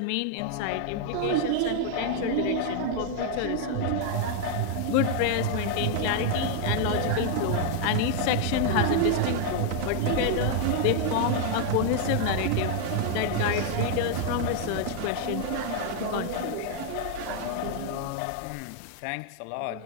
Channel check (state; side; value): different; both; correlation 0.00